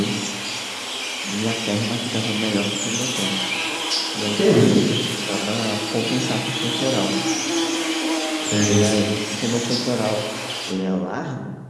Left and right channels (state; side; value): identical; both; correlation 1.00